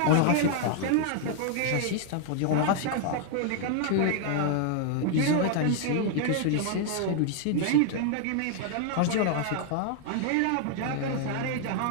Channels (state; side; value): different; both; correlation 0.00